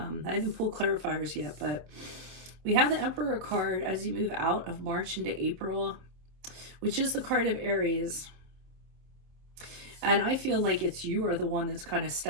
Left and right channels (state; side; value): late; left; 26 ms